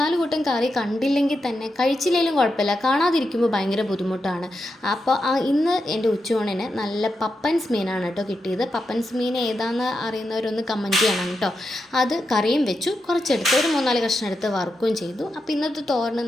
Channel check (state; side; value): normal; both; correlation 0.87